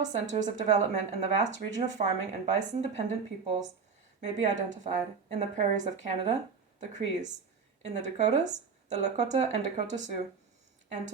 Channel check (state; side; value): quieter; left; 5.5 dB